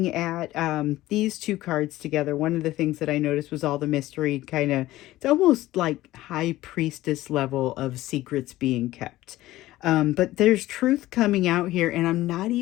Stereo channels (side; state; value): right; quieter; 16.3 dB